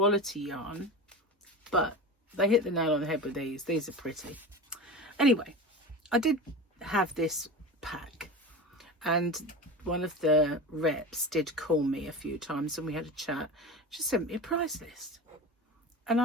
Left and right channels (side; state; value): both; normal; correlation 0.29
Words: yarn, but they hit the nail on the head with these. These are pretty. Anyway, I did have this pack, and one of the reps did call me a few times and we had a chat. She sent me a price list, and